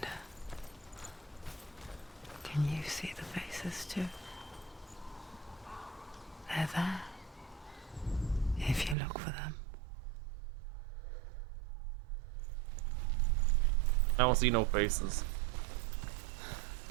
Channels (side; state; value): left; drops out; at 9.0 s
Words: can you see the faces too? They're there, if you look for them. I don't see no faces.